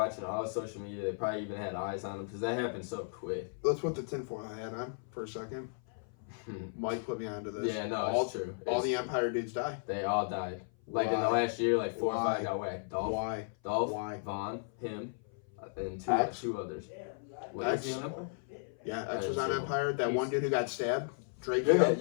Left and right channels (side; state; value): right; silent; 55 dB below the other